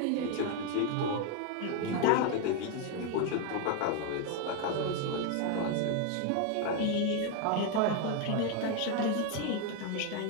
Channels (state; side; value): different; both; correlation 0.01